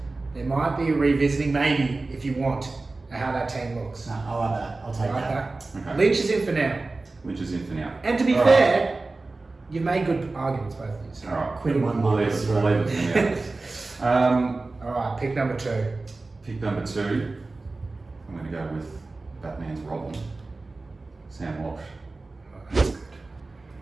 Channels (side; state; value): left; quieter; 3.4 dB